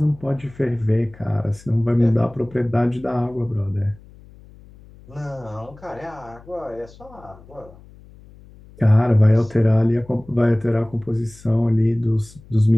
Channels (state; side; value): noise; left; hum, 23 dB below the sound